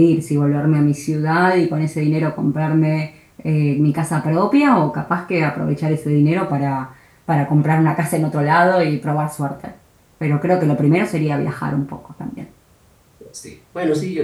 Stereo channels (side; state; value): both; identical; correlation 1.00